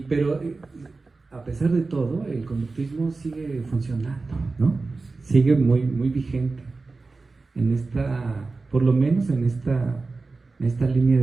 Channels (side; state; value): left; quieter; 3.8 dB